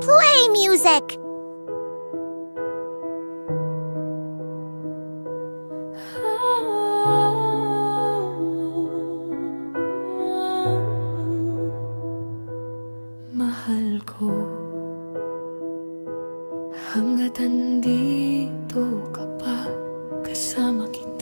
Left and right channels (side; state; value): both; inverted; correlation -1.00